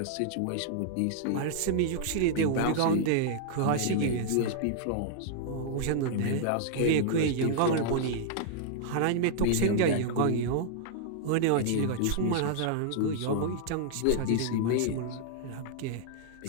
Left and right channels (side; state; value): both; different; correlation -0.01